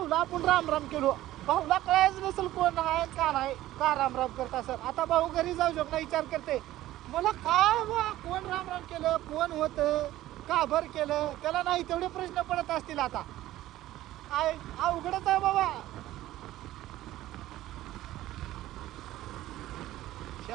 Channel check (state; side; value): quieter; left; 15.0 dB